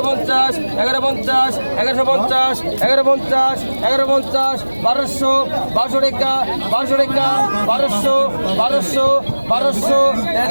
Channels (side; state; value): both; inverted; correlation -1.00